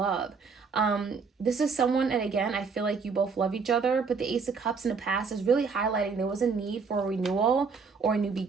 This is someone, and again, I feel like you both love each other, but the Ace of Cups in the past is really highlighting there was a need for a renewal or a new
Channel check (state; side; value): quieter; left; 5.1 dB